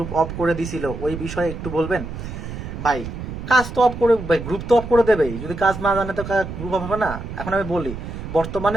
অফ করে দিছিল, ওই বিষয়ে একটু বলবেন? ভাই কাজ তো অফ করে, ভাই গ্রুপ তো অফ করে দেবেই, যদি কাজ না জানে তো গ্রুপ অফ হবে না। এখন আমি বলি,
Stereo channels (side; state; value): right; noise; rumble, 8 dB below the sound